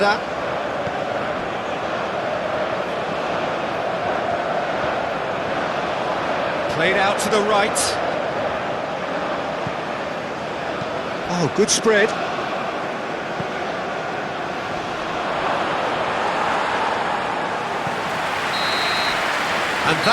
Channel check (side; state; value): both; identical; correlation 1.00